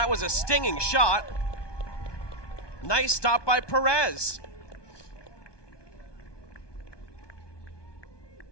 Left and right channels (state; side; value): late; right; 1.2 ms